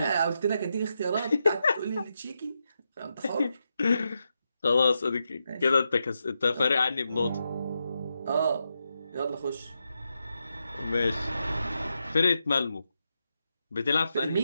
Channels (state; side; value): inverted; both; correlation -0.86